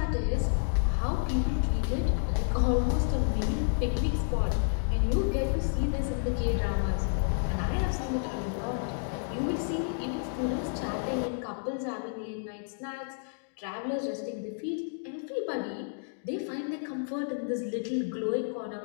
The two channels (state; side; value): silent; right; digital silence